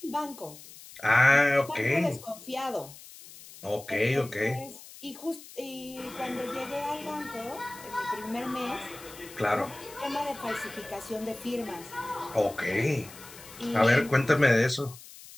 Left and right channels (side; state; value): left; noise; hiss, 18 dB below the sound